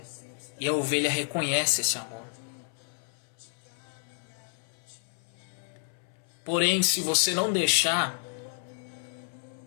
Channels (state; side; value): silent; right; 57 dB below the other